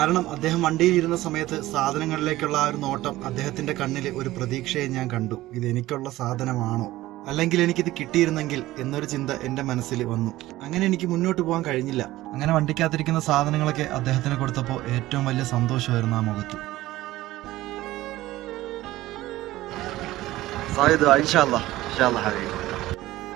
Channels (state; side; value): quieter; left; 16.7 dB